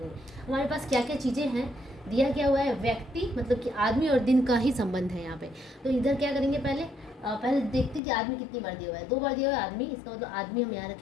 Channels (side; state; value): right; drops out; at 8.0 s